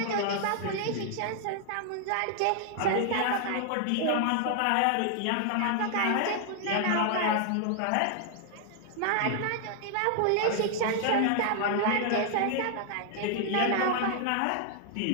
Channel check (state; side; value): different; both; correlation 0.00